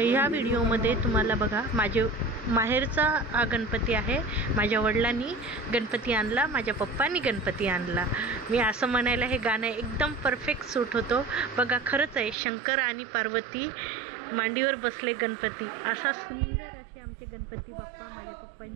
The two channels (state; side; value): drops out; left; at 12.4 s